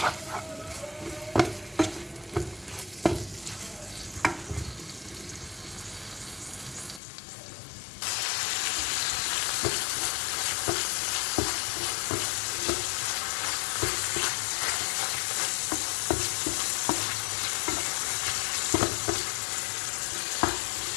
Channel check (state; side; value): drops out; right; at 7.0 s